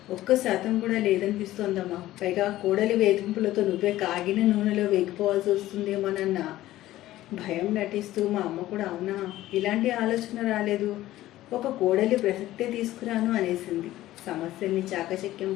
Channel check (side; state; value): right; quieter; 15.2 dB